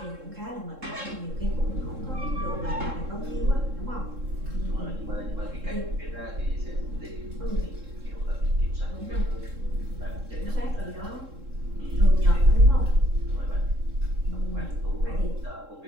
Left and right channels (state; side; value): late; left; 3.7 ms